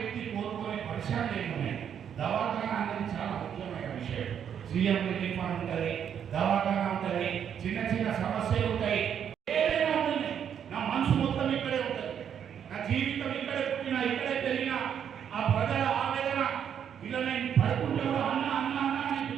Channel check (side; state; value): left; quieter; 8.5 dB